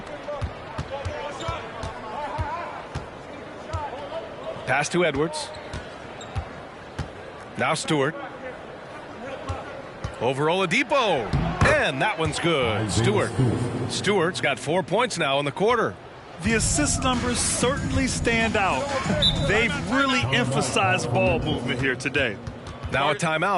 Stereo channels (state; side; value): identical; both; correlation 1.00